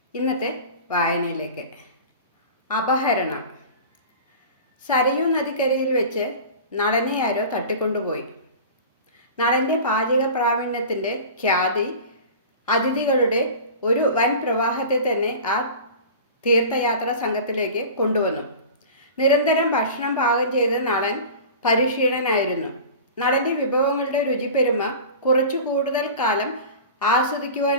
ഇന്നത്തെ വായനയിലേക്ക്. അപഹരണം. സരയൂ നദിക്കരയിൽ വെച്ച് നളനെ ആരോ തട്ടിക്കൊണ്ടുപോയി. നളൻ്റെ പാചക പ്രാവീണ്യത്തിൻ്റെ ഖ്യാതി അതിഥികളുടെ ഒരു വൻ പ്രവാഹത്തെ തന്നെ ആ തീർത്ഥയാത്രാ സംഘത്തിലേക്ക് കൊണ്ടുവന്നു. നിരന്തരം ഭക്ഷണം പാകം ചെയ്ത് നളൻ പരിശീലനായിരുന്നു. നളൻ്റെ വിഭവങ്ങളുടെ രുചിപ്പെരുമ കുറച്ചു കൂടുതൽ കാലം ആസ്വദിക്കുവാൻ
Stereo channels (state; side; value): inverted; both; correlation -0.36